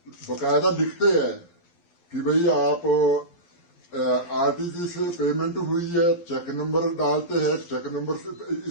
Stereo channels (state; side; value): late; right; 11 ms